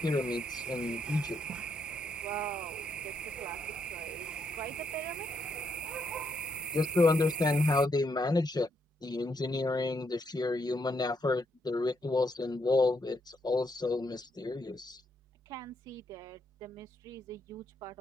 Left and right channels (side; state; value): both; normal; correlation 0.76